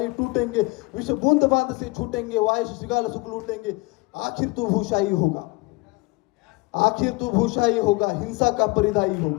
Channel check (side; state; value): right; quieter; 23.8 dB